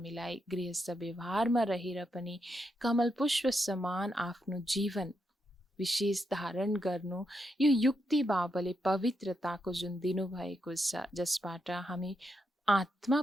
गृहस्थ व्यवहारमा रहेर पनि कमल पुष्प समान आफ्नो जीवन विशेष धारण गर्नु, यो युक्ति बाबाले पवित्रताको जुन दिनुभएको छ, जसबाट हामी आत्मा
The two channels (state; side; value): normal; both; correlation 0.82